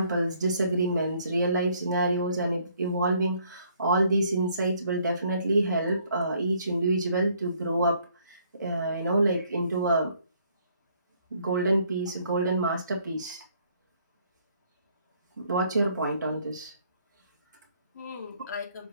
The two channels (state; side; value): inverted; both; correlation -0.65